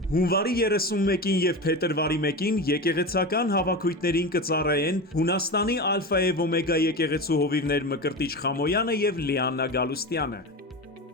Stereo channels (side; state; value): both; normal; correlation 0.24